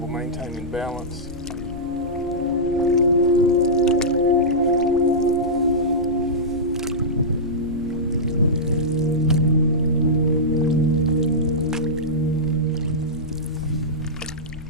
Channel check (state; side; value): noise; left; rumble, 14 dB below the sound